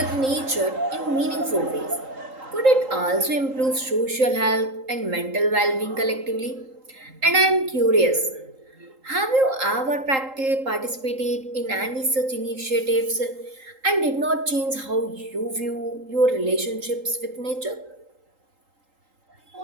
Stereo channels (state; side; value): late; left; 3.8 ms